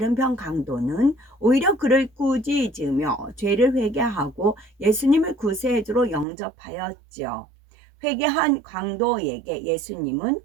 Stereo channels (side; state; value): left; drops out; at 6.2 s